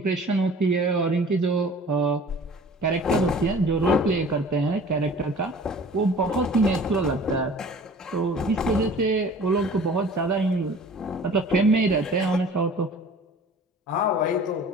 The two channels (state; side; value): normal; both; correlation 0.46